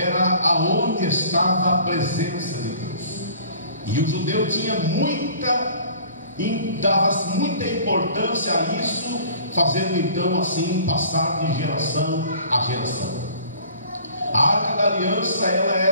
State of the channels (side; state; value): both; inverted; correlation -0.49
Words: aonde estava a presença de Deus. E o judeu tinha dava muita importância a isso, fazendo então assim passar de geração a geração. A arca da aliança, ela